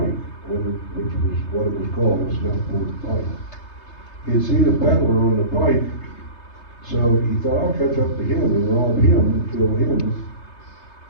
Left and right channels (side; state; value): right; late; 3.3 ms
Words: which was what it was called, a snuff-board pike. He had seen a peddler on the pike, so he thought, I'll catch up to him and rob him and kill him